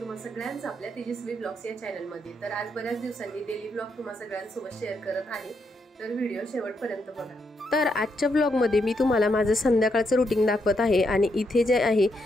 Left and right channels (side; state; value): both; normal; correlation 0.79